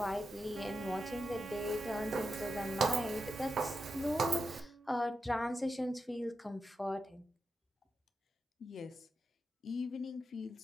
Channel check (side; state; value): both; normal; correlation 0.88